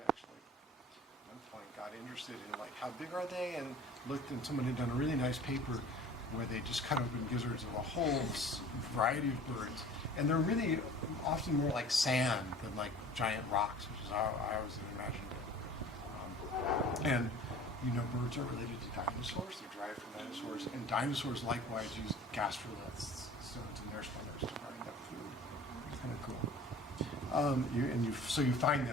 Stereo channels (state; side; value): normal; both; correlation 0.45